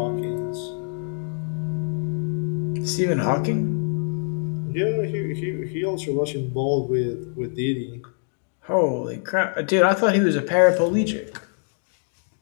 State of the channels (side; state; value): right; silent; 62 dB below the other